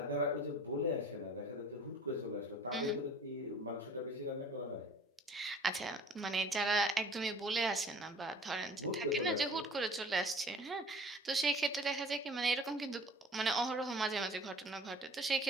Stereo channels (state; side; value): normal; both; correlation 0.48